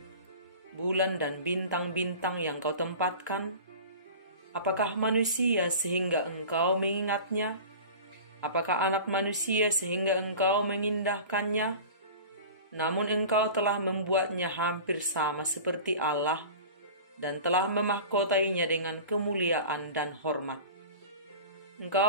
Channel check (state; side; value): inverted; both; correlation -0.37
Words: bulan dan bintang-bintang yang kau tempatkan, apakah manusia sehingga engkau mengingatnya? Apakah anak manusia sehingga engkau mengindahkannya? Namun engkau telah membuatnya hampir sama seperti Allah dan telah memahkotainya dengan kemuliaan dan hormat.